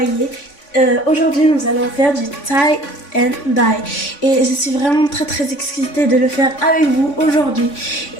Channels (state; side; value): late; right; 3.5 ms